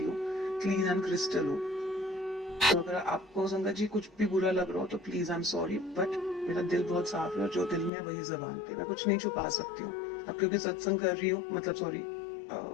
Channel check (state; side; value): drops out; right; at 7.9 s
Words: हूँ, क्लीन एंड क्रिस्टल हूँ। तो अगर आपको संगत जी कुछ भी बुरा लग रहा हो तो please I am sorry, but मेरा दिल बहुत साफ है और जो दिल में है वही जुबान पे, मैं कुछ नहीं छुपा सकती हूँ। अब क्योंकि सत्संग कर रही हूँ, मतलब सॉरी